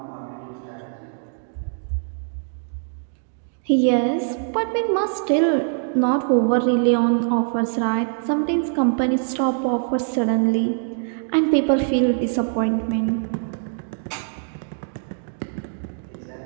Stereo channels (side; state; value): left; silent; digital silence